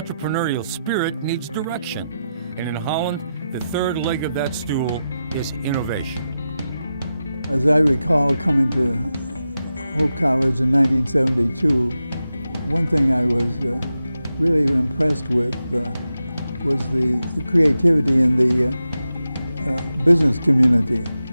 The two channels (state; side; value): inverted; both; correlation -0.89